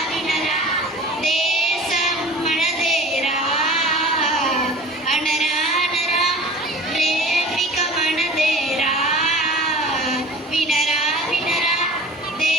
వినరా దేశం మనదేరా, అనరా అనరా ప్రేమిక మనదేరా. వినరా వినరా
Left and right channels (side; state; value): both; normal; correlation 0.41